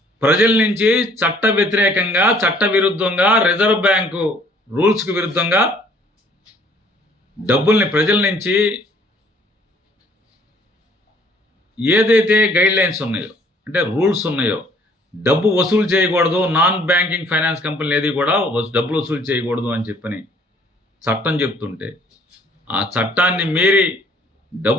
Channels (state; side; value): normal; both; correlation 0.59